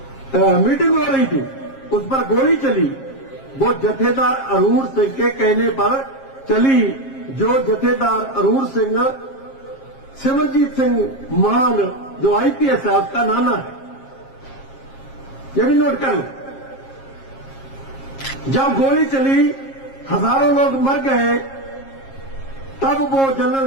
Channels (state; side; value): late; right; 7.4 ms